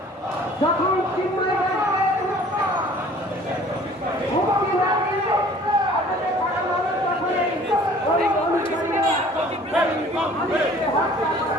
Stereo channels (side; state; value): both; normal; correlation 0.51